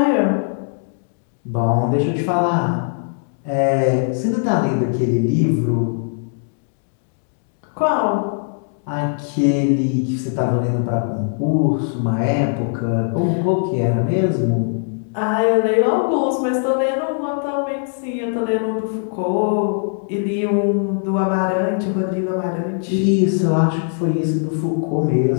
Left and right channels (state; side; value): silent; right; 66 dB below the other